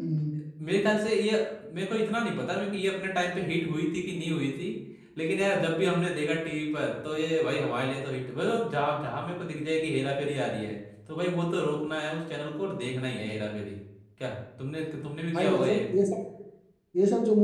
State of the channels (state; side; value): identical; both; correlation 1.00